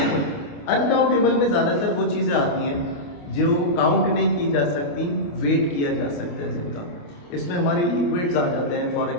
uncountable में ज्यादातर वो चीजें आती हैं जो काउंट नहीं की जा सकती, वेट किया जा सकता है जिनका। इसमें हमारे लिक्विड्स आ जाते हैं, फॉर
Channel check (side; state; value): right; late; 28 ms